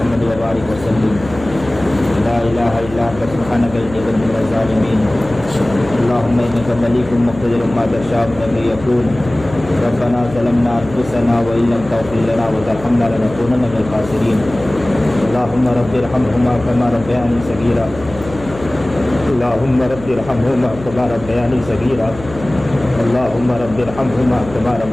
وبارک وسلم۔ لا الہ الا انت سبحانک انی کنت من الظالمین۔ اللہم انک ملیک مقتدر ما تشاء من یکون۔ ربنا ظلمنا انفسنا وان لم تغفر لنا وترحمنا لنکونن من الخاسرین۔ اللہم رب ارحمہما کما ربیانی صغیرا، اللہم رب ارحمہما کما ربیانی صغیرا، اللہم رب ارحمہما کما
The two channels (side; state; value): left; noise; hum, 15 dB below the sound